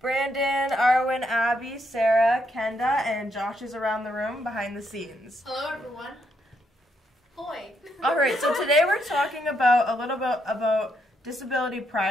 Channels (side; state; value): both; normal; correlation 0.77